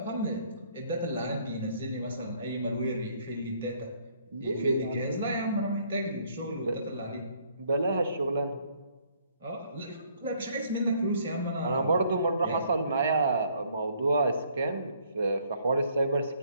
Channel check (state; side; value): inverted; both; correlation -0.64